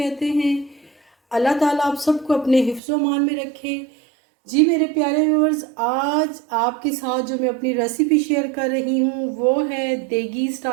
हैं। अल्लाह ताला आप सबको अपने हिफ्ज़ मान में रखे। जी मेरे प्यारे व्यूअर्स, आज आपके साथ जो मैं अपनी रेसिपी शेयर कर रही हूँ वो है देगी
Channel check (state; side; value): drops out; left; at 2.8 s